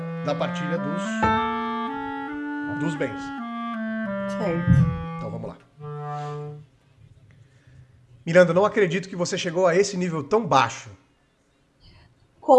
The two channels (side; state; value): both; identical; correlation 1.00